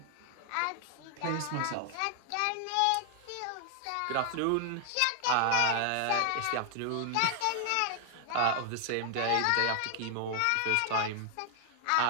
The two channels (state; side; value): different; both; correlation 0.00